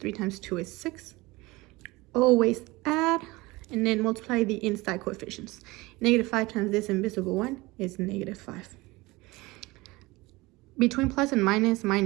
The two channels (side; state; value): left; quieter; 21.8 dB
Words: times 2 is 6. Always add, and then multiply the inside coefficients. Negative 5 times this invisible one is negative 5. Between plus and minus,